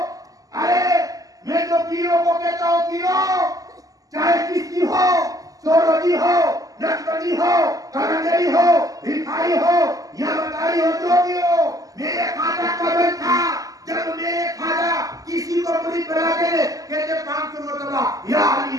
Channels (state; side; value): late; left; 0.17 ms